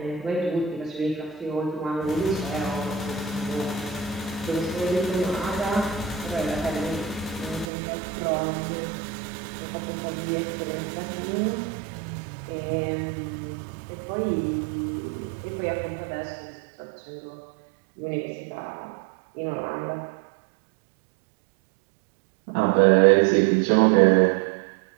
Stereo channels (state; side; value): drops out; left; at 7.7 s